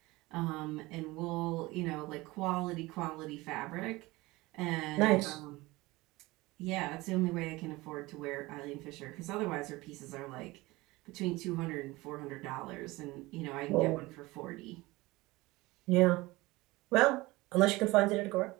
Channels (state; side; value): quieter; left; 21.0 dB